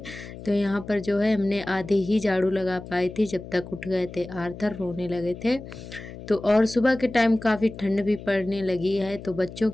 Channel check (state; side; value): noise; left; hum, 13 dB below the sound